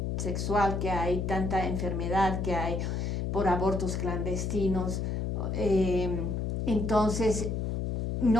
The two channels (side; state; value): left; noise; hum, 1 dB below the sound